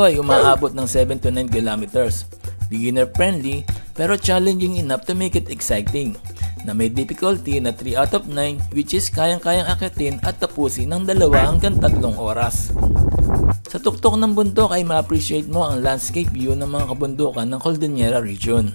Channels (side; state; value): both; inverted; correlation -1.00